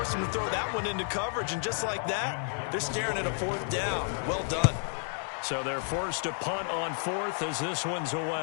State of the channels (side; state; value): right; silent; 57 dB below the other